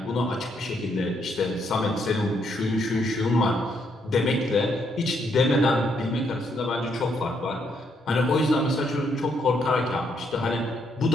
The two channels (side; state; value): both; normal; correlation 0.74